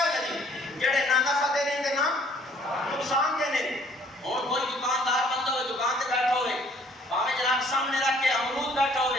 جی کیڑے نہ نفع دینے تے نہ نقصان دینے اور کوئی دکاندار بندہ ہوئے دکان تے بیٹھا ہوئے باہمیں جناب سامنے رکھ کے امرود بیٹھا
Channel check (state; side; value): normal; both; correlation 0.59